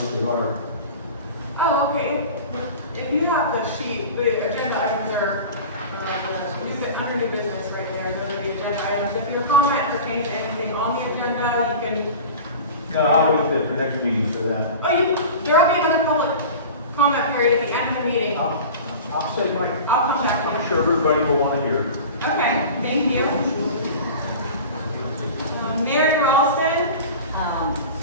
what they are. Oh, okay. If you have the sheet, the agenda items are, under new business right there, those are the agenda items. If your comment pertains to anything on the agenda, you can, No, I'll wait till the next meeting for that. oh, there'll be another public comment period at the end of the meeting. I'll say my, I'll come back to I'm you. sure everybody will want to hear. Okay, thank you. Mary Ralston.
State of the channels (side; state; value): both; inverted; correlation -0.35